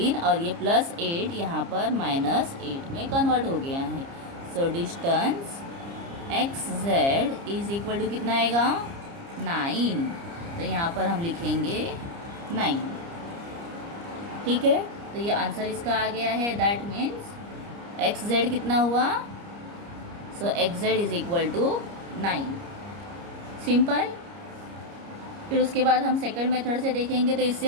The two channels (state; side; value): late; left; 30 ms